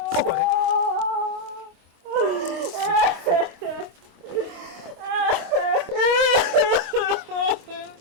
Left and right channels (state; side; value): late; left; 25 ms